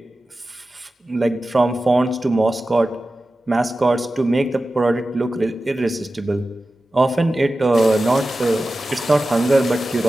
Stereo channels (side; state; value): both; normal; correlation 0.94